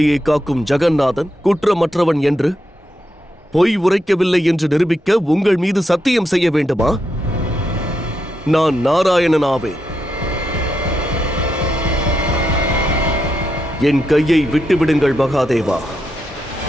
காக்கும் ஜெகநாதன் குற்றமற்றவன் என்று பொய் உரைக்கவில்லை என்று நிரூபிக்க உங்கள் மீது சத்தியம் செய்ய வேண்டுமா? நான் நாராயணனாவேன். என் கையை விட்டுவிடுங்கள் மகாதேவா.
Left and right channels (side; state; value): both; normal; correlation 0.83